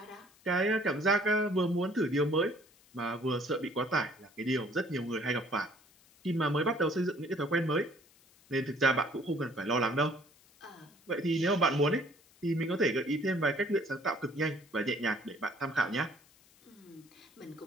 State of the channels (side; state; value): left; noise; hiss, 29 dB below the sound